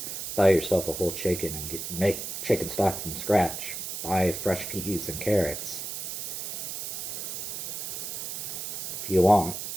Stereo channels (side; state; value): right; noise; hiss, 5 dB below the sound